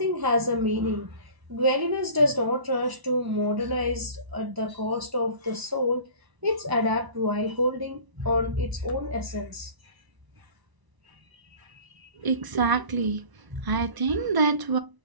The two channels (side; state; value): left; late; 1.0 ms